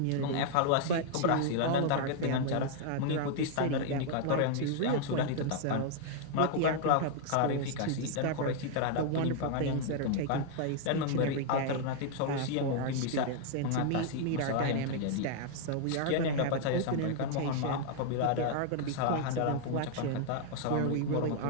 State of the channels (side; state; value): both; different; correlation 0.00